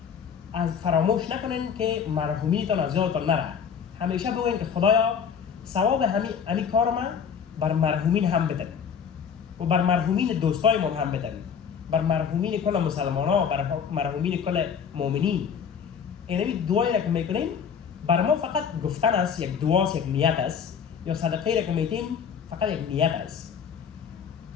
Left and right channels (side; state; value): right; quieter; 7.2 dB